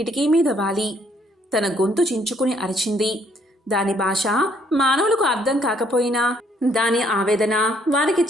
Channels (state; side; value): normal; both; correlation 0.67